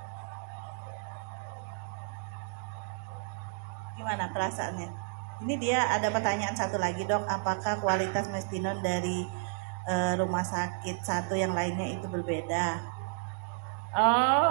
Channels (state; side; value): silent; left; digital silence